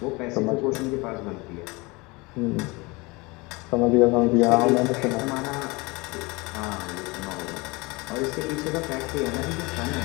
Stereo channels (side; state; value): right; quieter; 25.3 dB